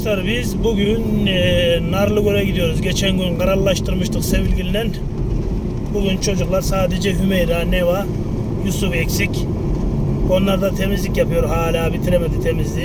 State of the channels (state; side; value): identical; both; correlation 1.00